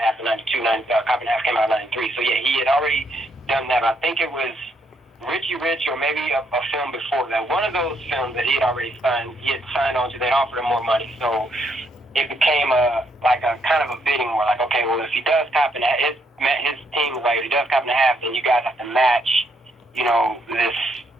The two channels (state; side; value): normal; both; correlation 0.73